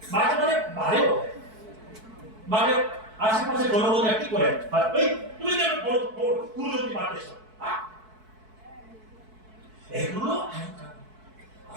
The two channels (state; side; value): late; left; 4.6 ms